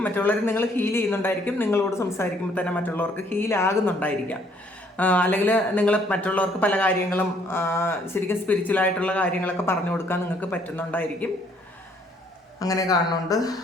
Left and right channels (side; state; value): both; normal; correlation 0.64